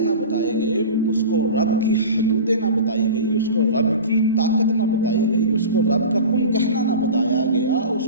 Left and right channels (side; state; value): both; inverted; correlation -0.33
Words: نہ بتائے گئے، اس کو رب کی حدودیں نہ بتائی گئی، اس کو رب کی طاقت نہ بتائی گئی، اس کو رب کا کن کہنا نہ بتایا گیا، اس